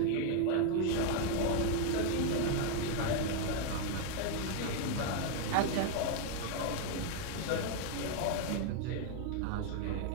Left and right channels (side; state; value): both; different; correlation 0.01